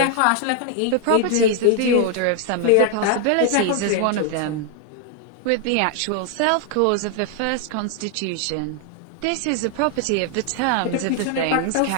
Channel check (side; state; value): both; different; correlation 0.00